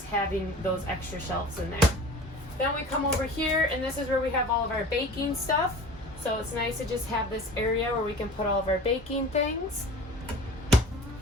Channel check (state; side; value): normal; both; correlation 0.40